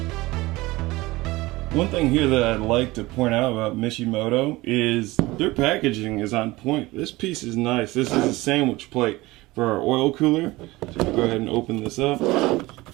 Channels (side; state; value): left; quieter; 20.3 dB